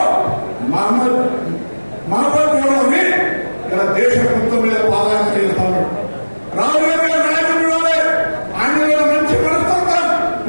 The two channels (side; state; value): both; inverted; correlation -1.00